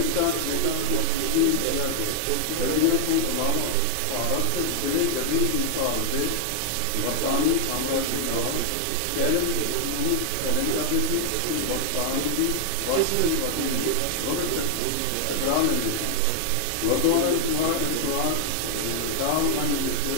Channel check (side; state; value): both; different; correlation 0.00